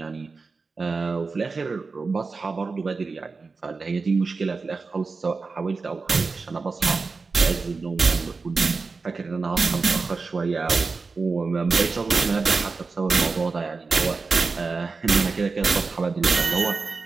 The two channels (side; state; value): left; quieter; 4.3 dB